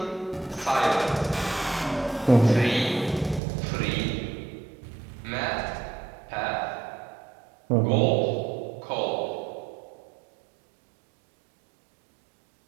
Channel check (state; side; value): drops out; left; at 3.4 s